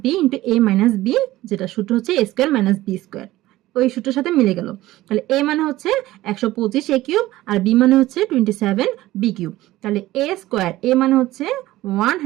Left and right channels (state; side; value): quieter; left; 16.6 dB